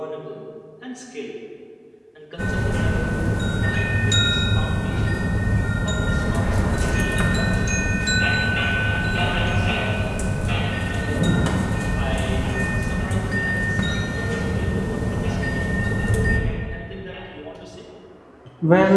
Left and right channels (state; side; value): identical; both; correlation 1.00